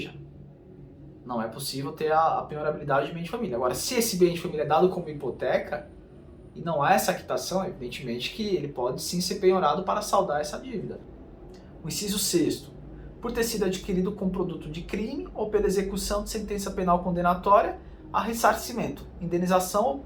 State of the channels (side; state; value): both; identical; correlation 1.00